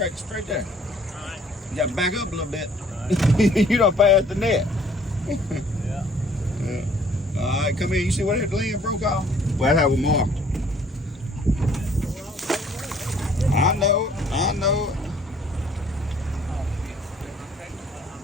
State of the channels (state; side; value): normal; both; correlation 0.58